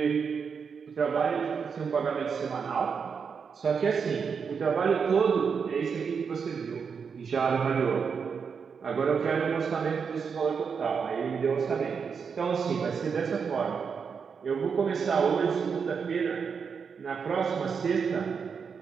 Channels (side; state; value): left; quieter; 6.1 dB